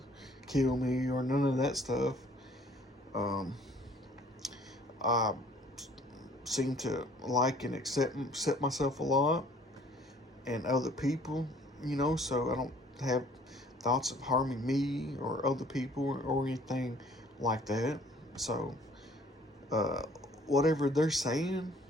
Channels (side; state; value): both; normal; correlation 0.56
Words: kill me, or none of that stuff. Um, I seem to like and accept myself a lot and other people, so I don't have thoughts of harming me or other people or anything like that. So, uh, whatever they're saying